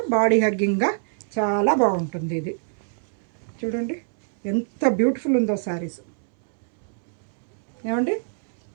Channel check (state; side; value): silent; left; 62 dB below the other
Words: బాడీ హగ్గింగ్గా చాలా బాగుంటుంది ఇది. చూడండి ఎంత బ్యూటిఫుల్ ఉందో శారీస్. ఏమండి,